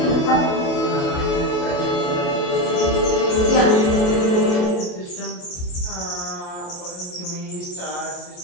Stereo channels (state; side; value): late; right; 28 ms